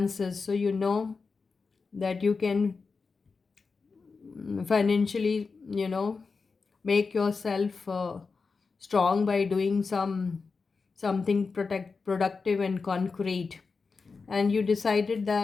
So you know that you can financially, make yourself strong by doing something productive and concrete. And you decided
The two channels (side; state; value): right; quieter; 4.6 dB